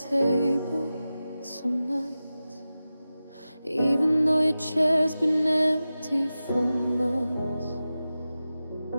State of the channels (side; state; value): both; inverted; correlation -0.94